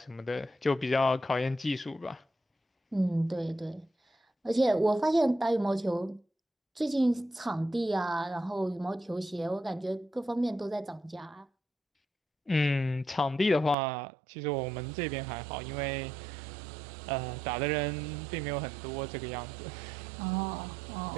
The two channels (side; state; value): left; drops out; at 13.8 s